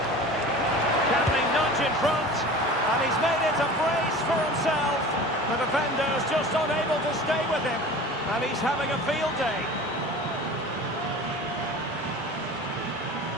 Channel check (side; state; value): both; normal; correlation 0.38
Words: Can they nudge in front? And he's made it a brace for himself. The defender's just unable to stay with him. And he's having a field day.